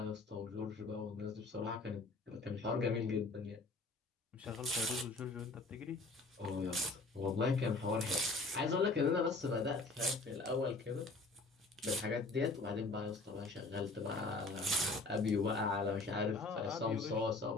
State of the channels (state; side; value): quieter; right; 3.4 dB